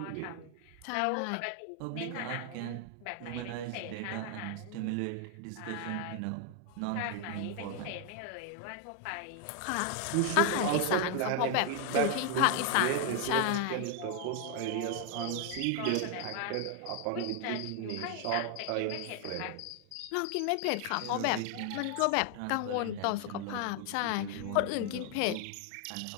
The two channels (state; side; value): different; both; correlation 0.00